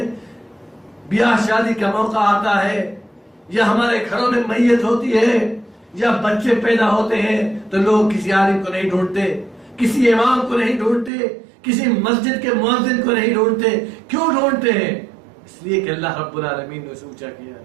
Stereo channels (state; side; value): drops out; left; at 11.1 s